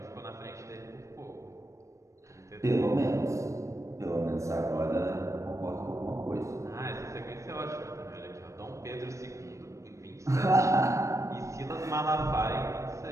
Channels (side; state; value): left; late; 0.15 ms